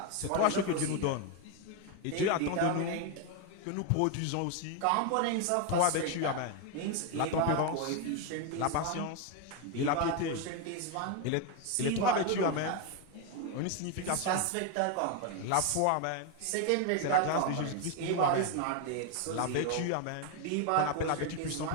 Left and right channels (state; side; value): different; both; correlation 0.01